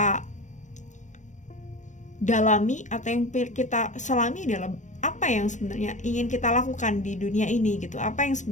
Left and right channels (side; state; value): right; late; 0.35 ms